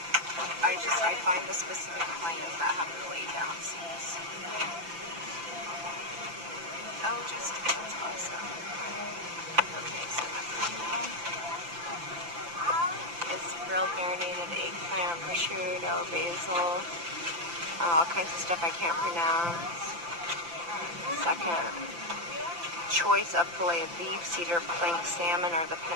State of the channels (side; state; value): left; late; 5.9 ms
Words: all kinds of stuff I can't pronounce. Second choice of filet of beef, cedar plank salmon, or the